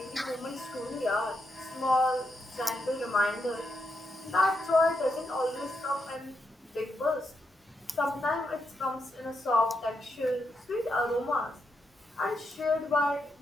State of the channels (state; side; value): normal; both; correlation 0.83